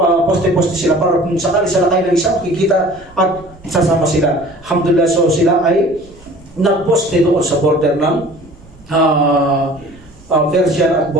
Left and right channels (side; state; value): right; noise; rumble, 24 dB below the sound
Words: poste-poste sila para kung sakali sa lakay ng isa makikita at sasama sila. Alhamdulillah. So sila ay nagposte doon sa border ng Persian at